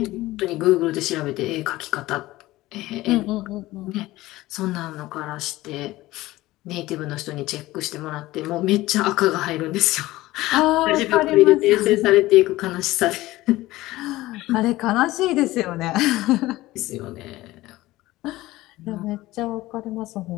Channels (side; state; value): right; quieter; 17.7 dB